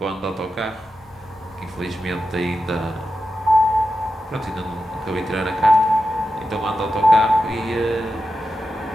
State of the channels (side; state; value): both; normal; correlation 0.90